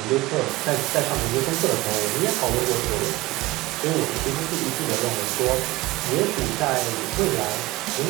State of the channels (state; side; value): quieter; left; 19.9 dB